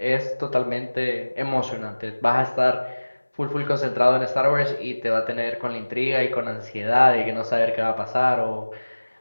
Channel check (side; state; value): both; inverted; correlation -1.00